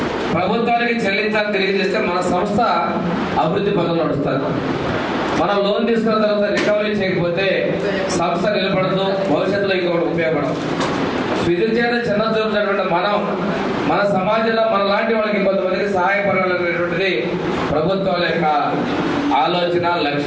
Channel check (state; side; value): identical; both; correlation 1.00